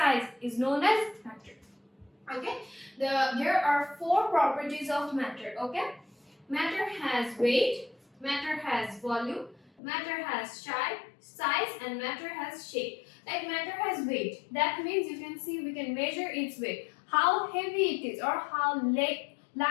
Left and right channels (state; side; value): drops out; right; at 9.7 s